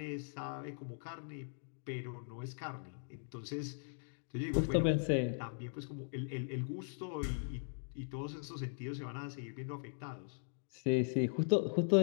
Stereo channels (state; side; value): silent; right; digital silence